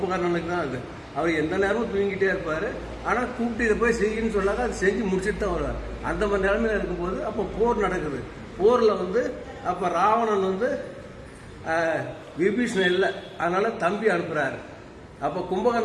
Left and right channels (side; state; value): both; identical; correlation 1.00